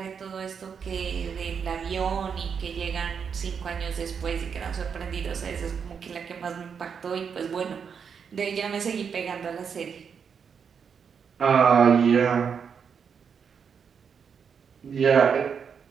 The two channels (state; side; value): quieter; left; 6.7 dB